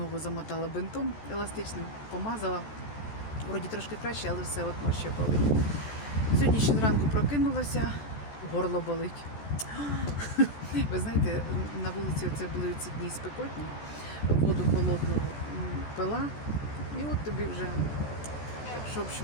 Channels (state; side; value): late; right; 14 ms